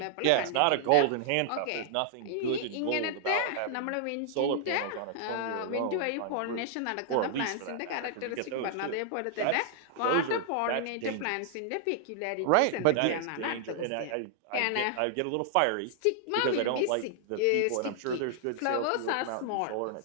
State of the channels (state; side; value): different; both; correlation -0.01